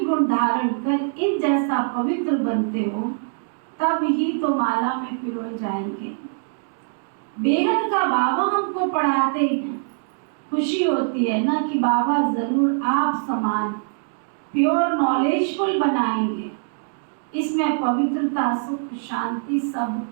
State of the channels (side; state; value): left; silent; digital silence